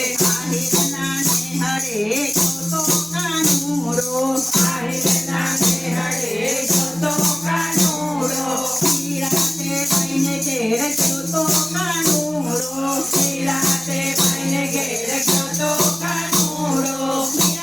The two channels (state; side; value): noise; right; hum, 28 dB below the sound